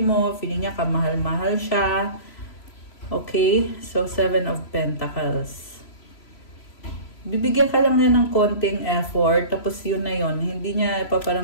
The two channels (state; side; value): late; right; 3.0 ms